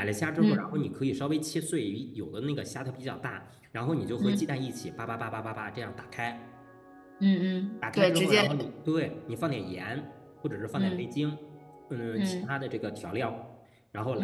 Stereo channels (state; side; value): identical; both; correlation 1.00